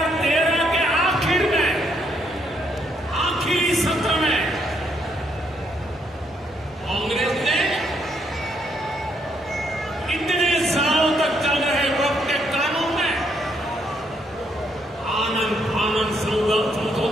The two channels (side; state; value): both; normal; correlation 0.73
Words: के आखिर में, आखिरी सत्र में कांग्रेस ने इतने सालों तक चल रहे वक्त के कानून में आनंद फानंद